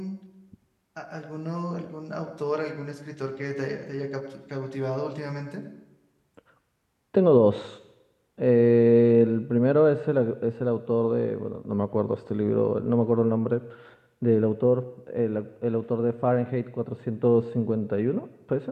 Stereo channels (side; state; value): both; identical; correlation 1.00